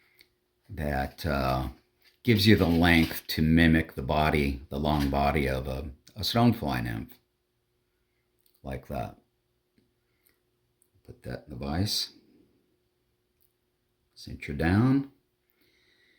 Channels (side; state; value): both; identical; correlation 1.00